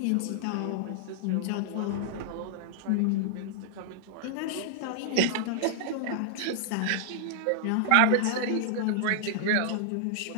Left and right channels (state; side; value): different; both; correlation -0.01